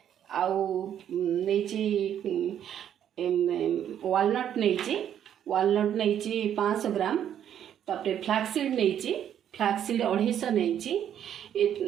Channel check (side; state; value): left; quieter; 9.9 dB